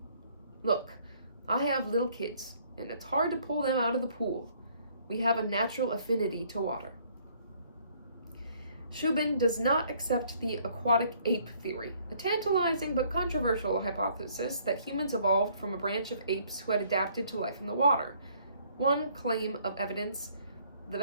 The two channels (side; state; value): both; inverted; correlation -0.63